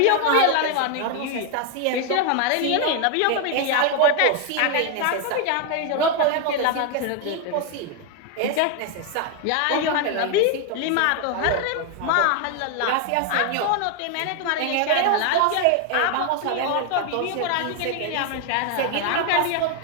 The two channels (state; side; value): different; both; correlation 0.01